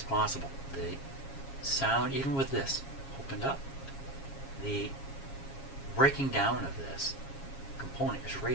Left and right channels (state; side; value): late; right; 7.3 ms